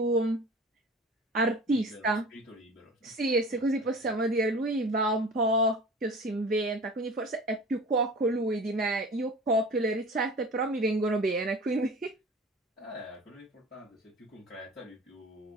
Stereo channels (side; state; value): both; normal; correlation 0.39